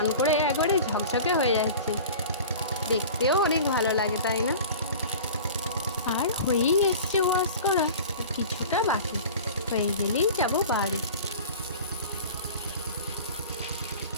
করে একবারে ঝকঝকে হয়ে যাচ্ছে, দেখতেও অনেক ভালো লাগে, তাই না? আর হয়েই এসছে ওয়াশ করা, কিছুটা বাকি। হয়ে গেলেই যাব বাড়ি।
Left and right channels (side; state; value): both; inverted; correlation -0.39